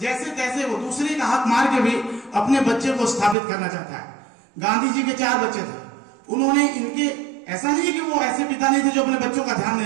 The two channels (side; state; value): left; drops out; at 3.4 s